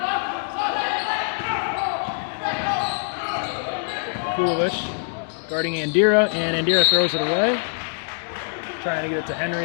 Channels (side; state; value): right; silent; digital silence